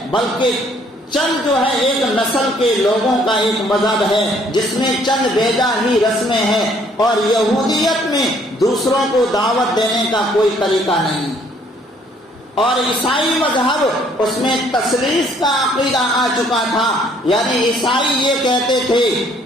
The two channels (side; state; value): both; normal; correlation 0.63